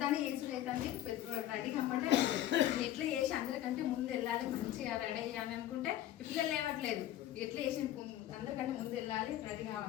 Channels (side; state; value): right; quieter; 13.0 dB